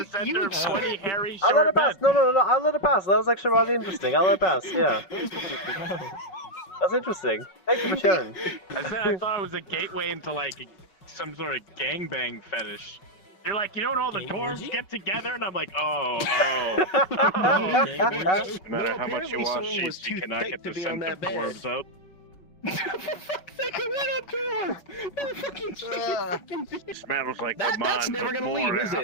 at the center of 20 hairy short I'll let it pass. men. No, I'll let it pass. That was actually rather interesting. I'll let it pass, yeah. That's interesting. Thank you for sharing. I said I thought it was a gateway into like some sort of gangbang fetish. You're like, you know when all the dwarves get together? And I'm like, oh. No matter how much you wash sheets, you cannot get the scent of dwarves out. Smells like the That's never gonna leave, is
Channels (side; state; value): right; late; 5.4 ms